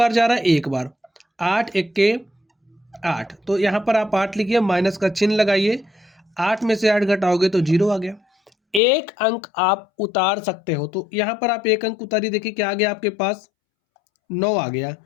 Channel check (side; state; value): right; drops out; at 8.8 s